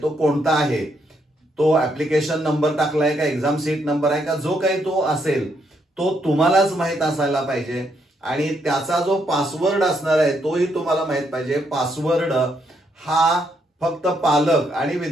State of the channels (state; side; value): normal; both; correlation 0.75